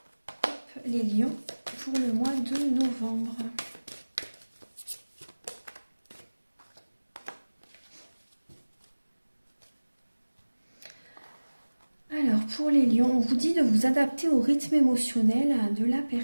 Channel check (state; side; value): inverted; both; correlation -1.00